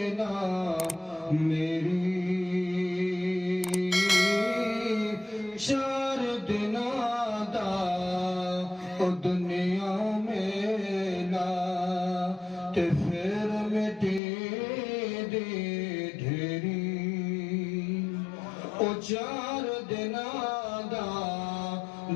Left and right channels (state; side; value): drops out; right; at 14.2 s